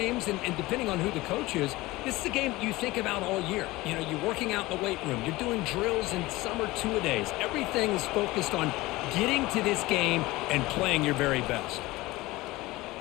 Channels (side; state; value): right; quieter; 19.9 dB